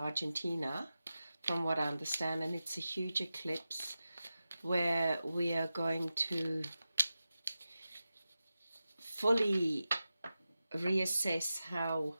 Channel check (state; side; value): inverted; both; correlation -0.93